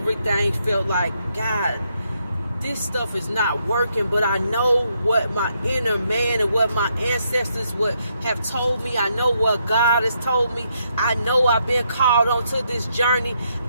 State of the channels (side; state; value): both; inverted; correlation -0.76